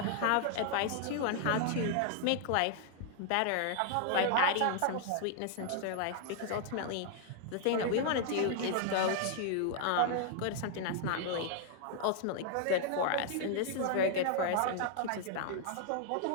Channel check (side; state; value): both; different; correlation 0.00